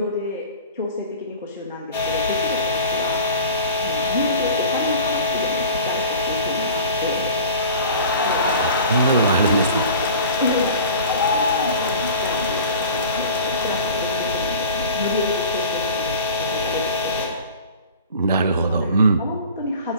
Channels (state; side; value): inverted; both; correlation -0.41